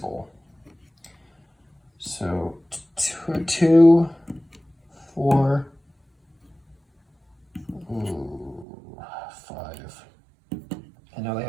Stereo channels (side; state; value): left; drops out; at 8.7 s